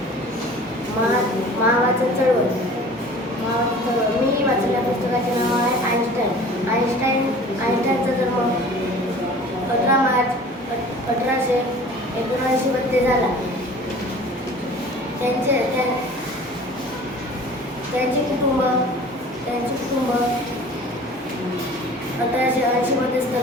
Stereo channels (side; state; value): both; normal; correlation 0.45